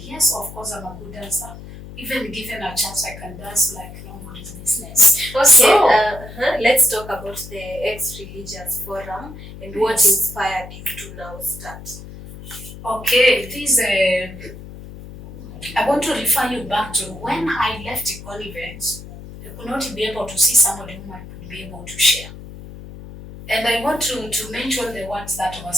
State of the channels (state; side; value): noise; left; hum, 14 dB below the sound